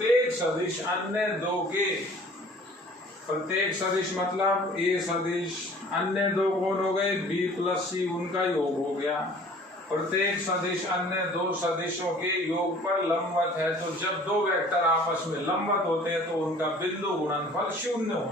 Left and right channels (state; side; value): normal; both; correlation 0.50